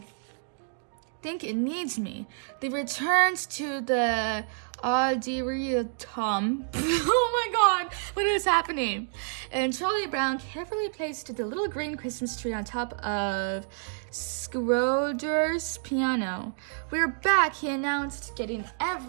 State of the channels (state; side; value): silent; left; digital silence